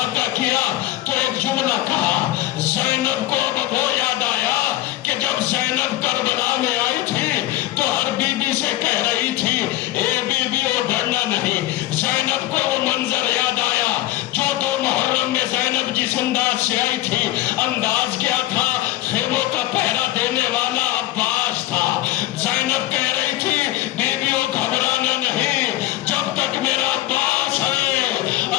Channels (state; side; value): quieter; right; 16.2 dB